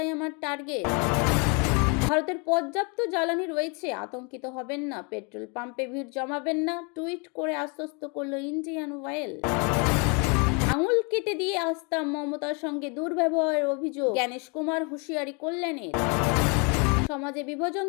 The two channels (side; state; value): right; quieter; 33.5 dB